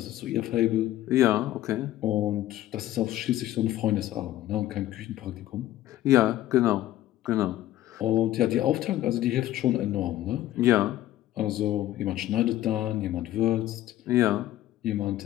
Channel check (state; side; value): quieter; right; 14.2 dB